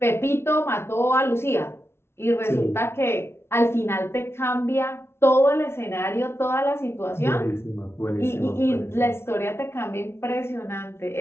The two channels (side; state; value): right; late; 0.12 ms